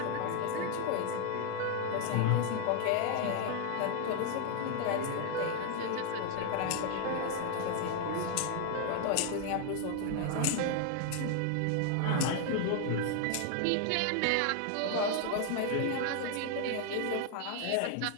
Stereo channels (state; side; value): different; both; correlation 0.00